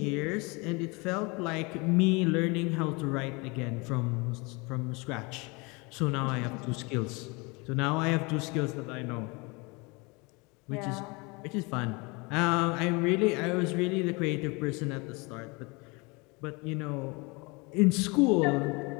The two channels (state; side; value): quieter; right; 27.7 dB